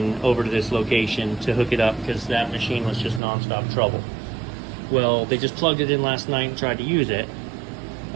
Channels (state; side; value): drops out; left; at 3.2 s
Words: over to this location to hook it up because that machine was just nonstop trouble. Well, they just plugged it in last night and tried to use it.